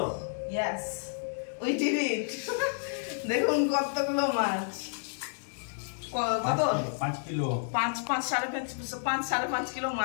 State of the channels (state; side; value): silent; right; digital silence